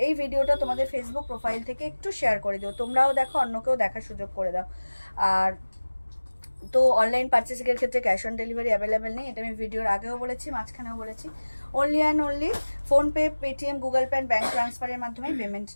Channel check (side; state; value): both; inverted; correlation -1.00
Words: এই ভিডিওটা তোমাদের ফেসবুক প্রোফাইল থেকে একটু শেয়ার করে দিও, তোমরাও দেখো, অন্যকেও দেখার সুযোগ করে দাও। আর তো অনলাইন পারচেসিংয়ের ক্ষেত্রে ক্যাশ অন ডেলিভারি অ্যাভেলেবেল নেই, এটা আমি ভিডিওর আগেও বলেছি, মাঝখানেও বলেছি। Only and only PhonePe, Paytm, Google Pay, bank ট্রান্সফারের মাধ্যমে পেমেন্ট